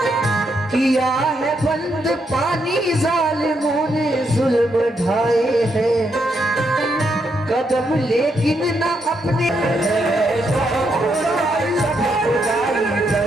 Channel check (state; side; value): normal; both; correlation 0.78